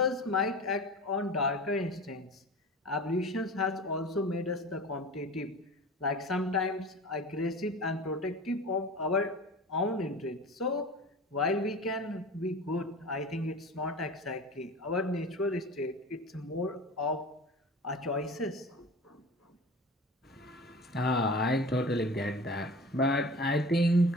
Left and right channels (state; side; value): normal; both; correlation 0.36